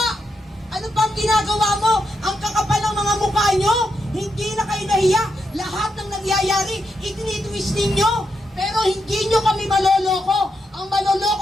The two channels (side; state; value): both; normal; correlation 0.83